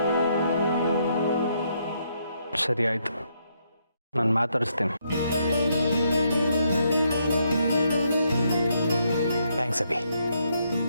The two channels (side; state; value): both; inverted; correlation -0.75